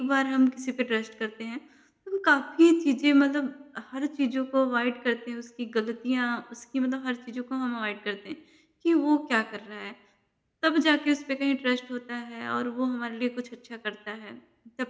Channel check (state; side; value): identical; both; correlation 1.00